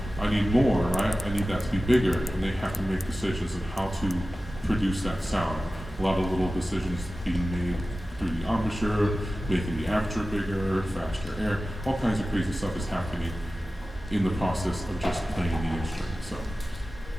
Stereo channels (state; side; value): normal; both; correlation 0.95